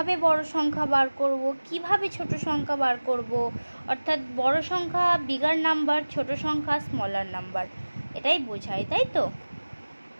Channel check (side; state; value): both; inverted; correlation -1.00